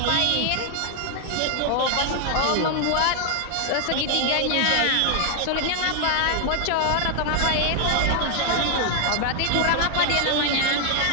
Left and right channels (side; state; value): both; different; correlation 0.00